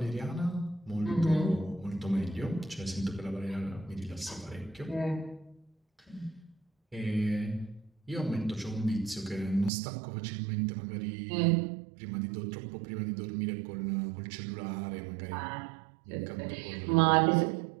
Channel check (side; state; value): left; drops out; at 9.7 s